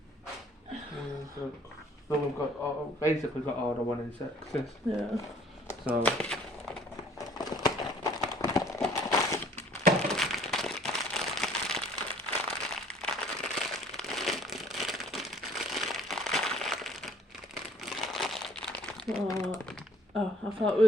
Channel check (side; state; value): both; normal; correlation 0.56